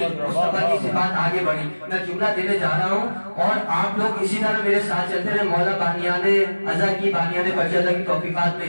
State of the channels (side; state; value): both; inverted; correlation -1.00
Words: مصطفیٰ کی صفات آگے بڑھی۔ میں جملہ دینے جا رہا ہوں اور آپ لوگ اسی طرح میرے ساتھ چلتے رہے۔ مولا بانیان عزا کی، بانیان فرجدہ کی توفیقات میں